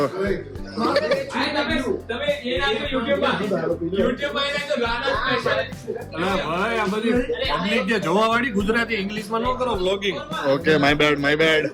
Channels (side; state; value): both; identical; correlation 1.00